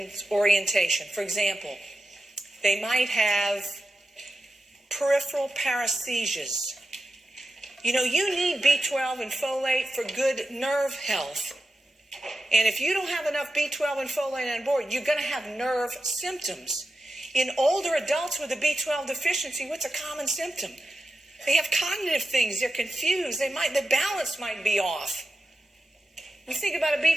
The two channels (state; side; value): normal; both; correlation 0.91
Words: orientation. For example, they might have peripheral paresthesias. You know, you need B12 and folate for good nerve health. And if you don't have enough B12 and folate on board, you're going to have nerve symptoms. In older adults with a B12 deficiency, what's a common symptom? They have cognitive things. They're confused. The balance might be off. We think about a